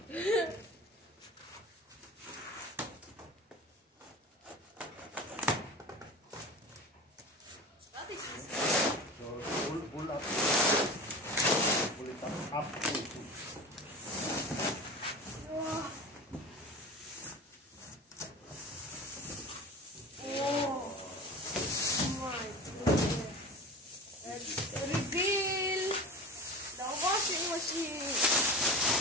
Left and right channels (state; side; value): normal; both; correlation 0.33